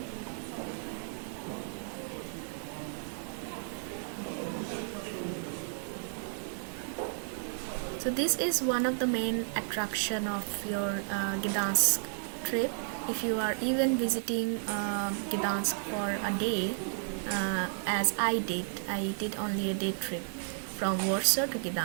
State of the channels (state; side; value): silent; left; digital silence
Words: So this is one of the main attraction of your Gdansk trip. If you are even visiting Gdansk for a day, as I did only a day trip from Warsaw to